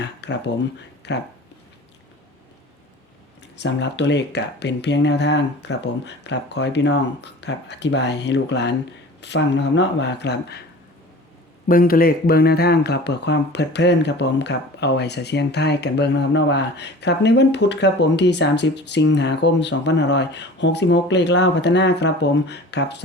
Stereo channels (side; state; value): both; normal; correlation 0.41